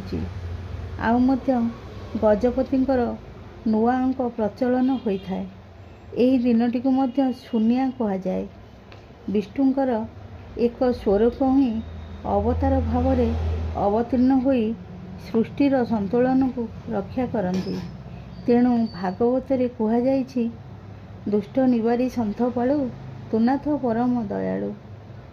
आउ मध्य गजपतिंकर नुआ अंक प्रचलन होइथाए। एही दिनटी को मध्य शून्या कहा जाए। विष्णुंकर एक स्वरूप ही अवतार भाव रे अवतीर्ण होई सृष्टिर संतुलन को रक्षा करती। तेणु भागवत रे कहा जाइछि, दुष्ट निवारी सन्थ पाळु तुनाथ परम दयालु।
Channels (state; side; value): identical; both; correlation 1.00